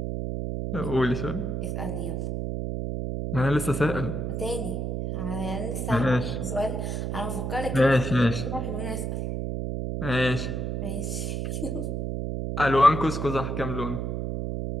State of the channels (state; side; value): noise; right; hum, 2 dB below the sound